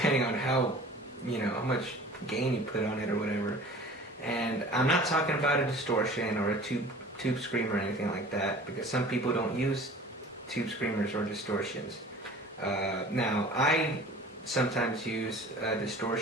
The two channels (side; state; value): both; normal; correlation 0.43